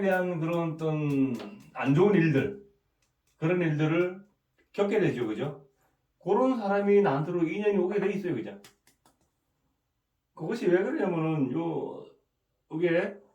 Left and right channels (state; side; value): identical; both; correlation 1.00